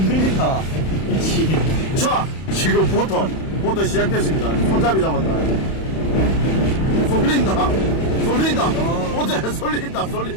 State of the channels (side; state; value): right; late; 31 ms